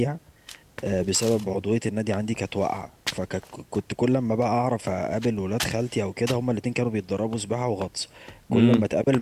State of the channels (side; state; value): both; identical; correlation 1.00